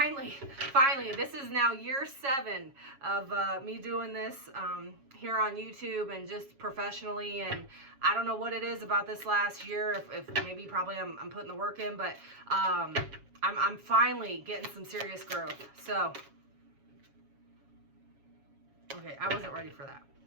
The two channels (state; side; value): late; left; 7.3 ms